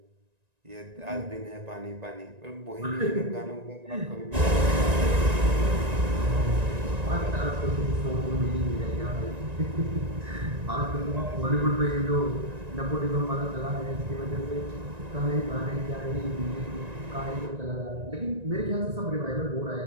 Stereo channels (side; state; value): left; late; 1.9 ms